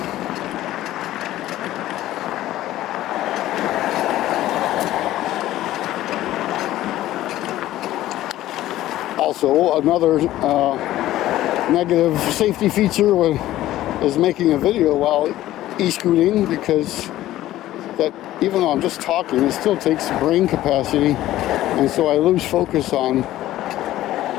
Also, another negative safety feature is making a video while e-scooting, because that, even though I'm just talking, it still takes brain capacity, and so I lose focus on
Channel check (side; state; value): right; quieter; 14.6 dB